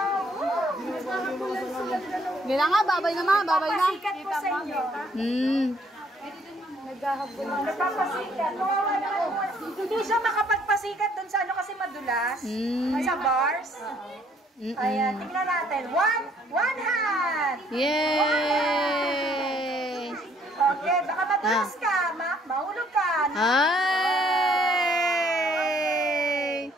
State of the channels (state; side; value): normal; both; correlation 0.64